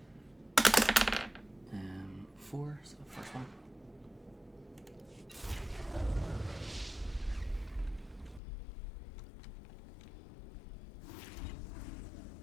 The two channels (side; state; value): right; drops out; at 8.4 s